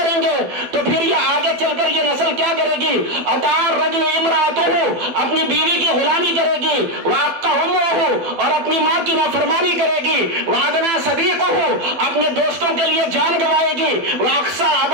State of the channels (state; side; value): late; left; 12 ms